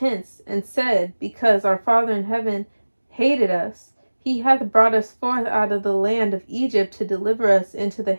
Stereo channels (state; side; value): inverted; both; correlation -1.00